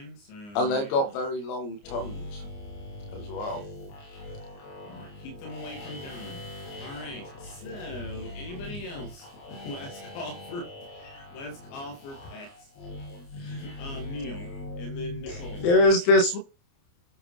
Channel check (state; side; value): late; right; 29 ms